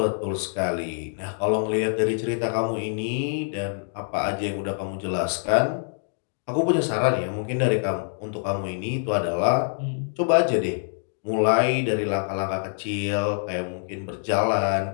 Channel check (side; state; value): right; silent; digital silence